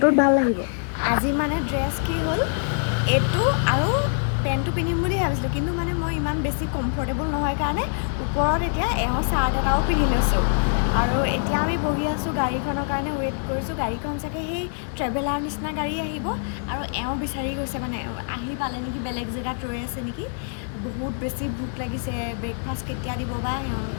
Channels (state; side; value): silent; right; 57 dB below the other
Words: ভাল লাগিব। আজি মানে ড্ৰেছ কি হ'ল, এইটো আৰু পেণ্টটো পিন্ধিম বুলি ভাবিছিলোঁ, কিন্তু মানে মই ইমান বেছি কমফৰ্টেবল নহয় কাৰণে ওপৰত এতিয়া চাৰ্ট এটাও পিন্ধি লৈছোঁ। আৰু এতিয়া আমি বহি আছোঁ, গাড়ীখনৰ কাৰণে ৱেইট কৰিছোঁ। গাড়ীখন চাগে সেই ট্ৰেভেলাৰ নিচিনা গাড়ী আহিব আৰু বিচাৰি গৈছে, মানে আহি পালে নেকি, বেলেগ জেগাত ৰৈ আছে নেকি। বহুত বেছি ভোক লাগিছে। ব্ৰেকফাষ্ট কেতিয়া দিব বা